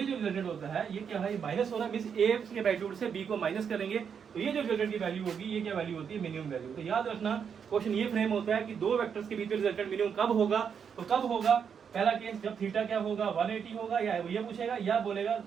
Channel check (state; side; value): quieter; left; 7.1 dB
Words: जो रिजल्टेंट होता है ये क्या है, माइनस हो रहा है, मींस a के मैग्नीट्यूड से b को माइनस करेंगे तो ये जो रिजल्टेंट की वैल्यू होगी ये क्या वैल्यू होती है, मिनिमम वैल्यू। तो याद रखना क्वेश्चन ये फ्रेम होता है कि दो वेक्टर्स के बीच में रिजल्टेंट मिनिमम कब होगा। तो कब होगा, पहला केस जब थीटा क्या होगा 180 होगा, या ये पूछेगा या बोलेगा